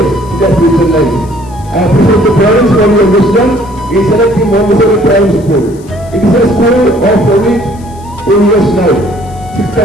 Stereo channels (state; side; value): noise; left; hiss, 26 dB below the sound